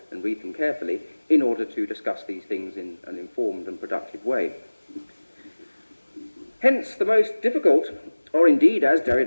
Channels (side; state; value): both; inverted; correlation -1.00